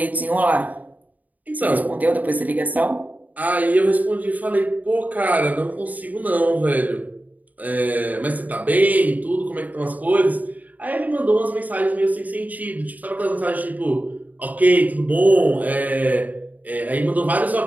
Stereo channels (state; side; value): late; left; 0.077 ms